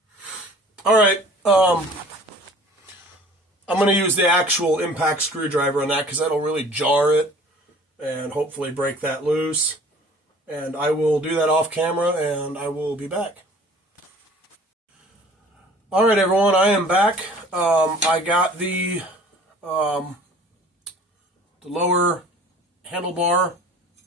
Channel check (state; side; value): normal; both; correlation 0.49